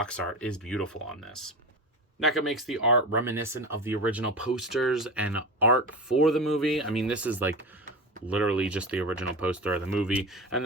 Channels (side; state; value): both; normal; correlation 0.26